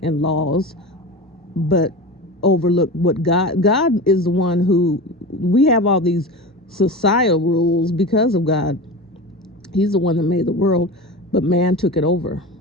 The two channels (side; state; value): both; normal; correlation 0.28